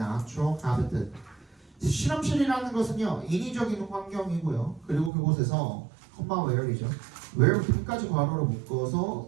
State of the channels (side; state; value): left; drops out; at 5.1 s